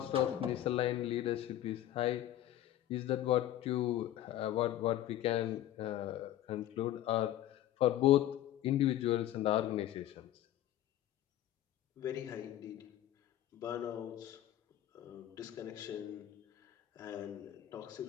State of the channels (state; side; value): quieter; right; 12.9 dB